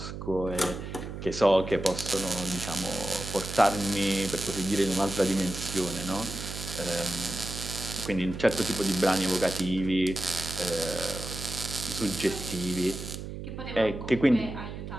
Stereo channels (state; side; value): noise; right; hum, 8 dB below the sound